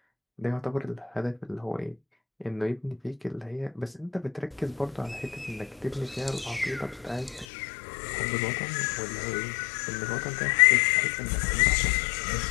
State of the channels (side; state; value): right; drops out; at 7.5 s